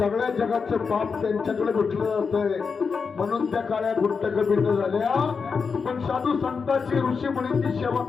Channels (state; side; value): quieter; right; 5.4 dB